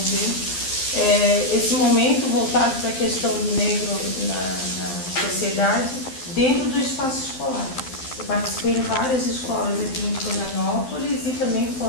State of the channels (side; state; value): right; late; 11 ms